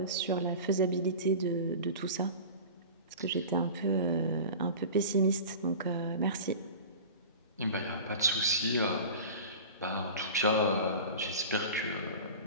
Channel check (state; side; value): inverted; both; correlation -0.35